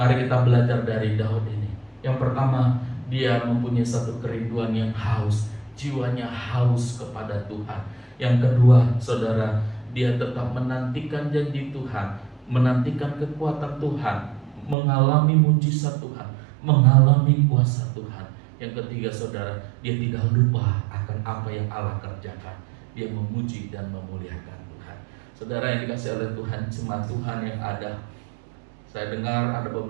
kita belajar dari Daud ini. Yang pertama, Dia mempunyai satu kerinduan yang haus, jiwanya haus kepada Tuhan. Yang kedua, saudara, dia tetap menantikan janji Tuhan, menantikan kekuatan Tuhan, mengalami mujizat Tuhan, mengalami kuasa Tuhan. Yang ketiga, saudara, dia tidak lupa akan apa yang Allah kerjakan. Dia memuji dan memuliakan Tuhan. Saudara yang dikasihi oleh Tuhan, jemaat Tuhan yang ada, saya dengar ada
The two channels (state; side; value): drops out; left; at 14.8 s